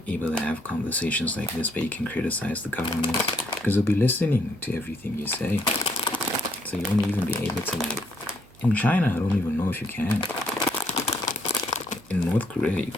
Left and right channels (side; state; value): right; noise; hum, 27 dB below the sound